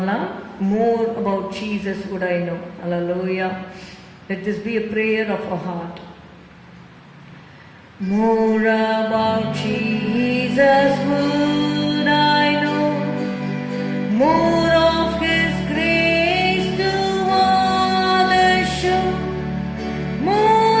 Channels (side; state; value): both; identical; correlation 1.00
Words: More about Jesus would I know. Hallelujah. Let this be a prayer of our heart. More about Jesus would I know. More of His grace to others show.